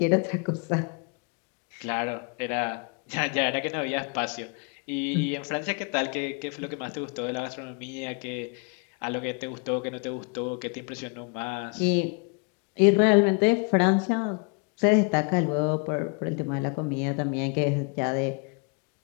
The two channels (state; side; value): quieter; right; 35.5 dB